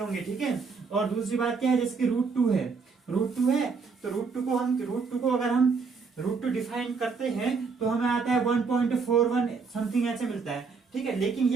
ठीक है, और दूसरी बात क्या है, जैसे कि रूट टू है, रूट टू है तो रूट टू को अगर हम रूट टू डिफाइन करते हैं तो हमें आता है 1.41 समथिंग ऐसे मिलता है। ठीक है, लेकिन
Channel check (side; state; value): left; quieter; 5.0 dB